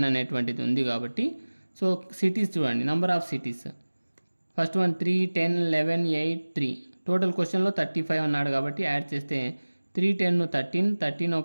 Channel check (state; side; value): inverted; both; correlation -1.00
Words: అనేటువంటిది ఉంది కాబట్టి. సో సిటీస్ చూడండి, number of cities. First one 3, 10, 11, 8, 3. Total క్వశ్చన్లో 35 అన్నాడు కాబట్టి యాడ్ చేస్తే 3, 10, 13, 13